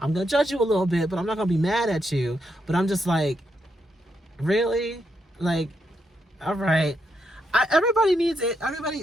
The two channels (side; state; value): both; normal; correlation 0.81